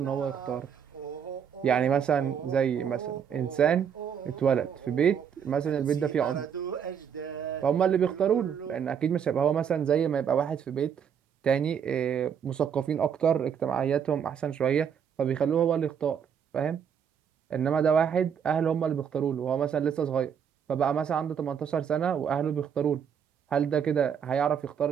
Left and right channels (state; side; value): quieter; left; 7.8 dB